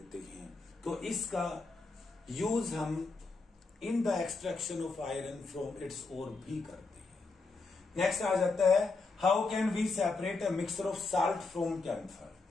हैं। तो इसका यूज हम in the extraction of iron from its ore भी करते हैं। नेक्स्ट आ जाता है how can we separate a mixture of salt from camphor.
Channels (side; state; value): right; quieter; 3.9 dB